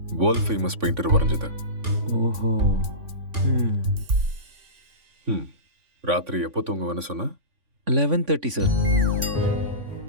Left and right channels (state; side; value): late; left; 3.5 ms